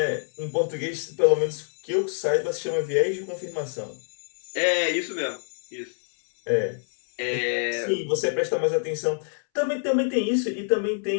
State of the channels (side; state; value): right; silent; 61 dB below the other